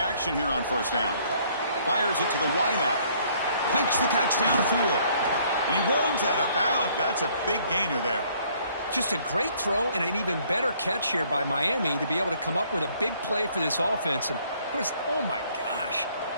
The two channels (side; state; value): both; inverted; correlation -0.62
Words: here on first down. Fires it to the wideout. Makes the catch downfield. And he runs out of bounds. That's a big gainer there. Just a great throw and an even better catch here by Miami to be able to come up with a big play for this offense. And, of course, oh, my gosh,